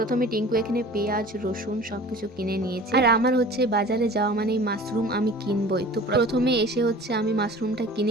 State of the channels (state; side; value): normal; both; correlation 0.43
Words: টিঙ্কু এখানে পেঁয়াজ রসুন সব কিছু কিনে নিয়েছে। আর আমার হচ্ছে বাজারে যাওয়া মানেই মাশরুম আমি কিনবই। তো প্রথমে এসে হচ্ছে আমি মাশরুমটা